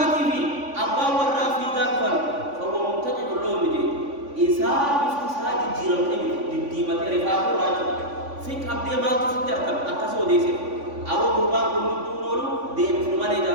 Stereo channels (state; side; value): late; left; 3.5 ms